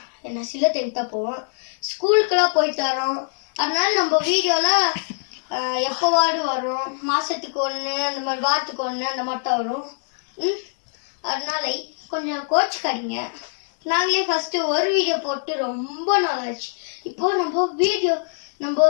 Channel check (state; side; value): silent; right; digital silence